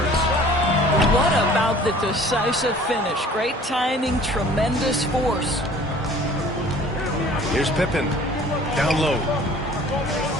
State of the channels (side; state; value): both; normal; correlation 0.50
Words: What about the decisive finish? Great timing, tremendous force. Here's Pippen. Down low.